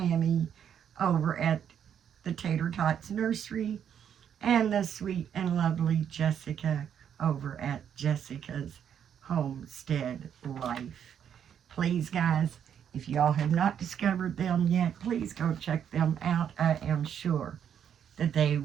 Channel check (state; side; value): quieter; left; 8.7 dB